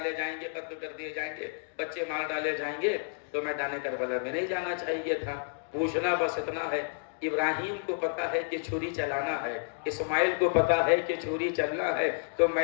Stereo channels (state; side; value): silent; right; digital silence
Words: جائیں گے, قتل کر دیے جائیں گے, بچے مار ڈالے جائیں گے, تو میدان کربلا میں نہیں جانا چاہیے تھا. پوچھنا بس اتنا ہے, ابراہیم کو پتا ہے کہ چھری چلانا ہے, اسماعیل کو پتا ہے کہ چھری چلنا ہے, تو